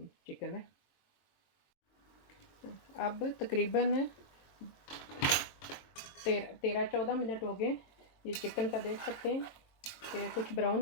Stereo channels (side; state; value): right; late; 22 ms